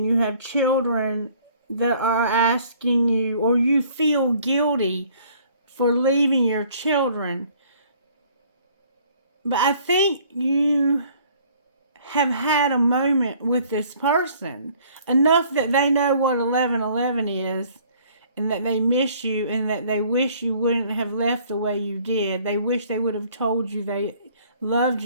you have children that are asking you, or you feel guilty for leaving your children. But I think you have had a moment with this person enough that they know what 11:11 is, and that they miss you, and that they wish you wouldn't have left the way you did. They wish they would have told you they loved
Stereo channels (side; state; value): both; inverted; correlation -0.57